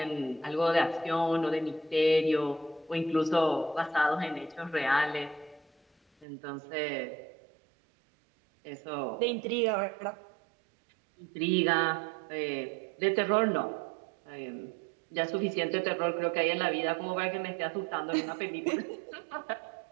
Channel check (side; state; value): left; drops out; at 6.2 s